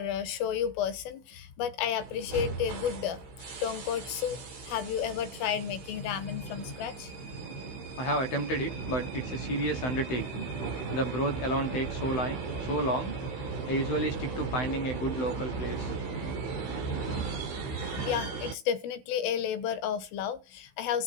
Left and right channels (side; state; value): right; late; 16 ms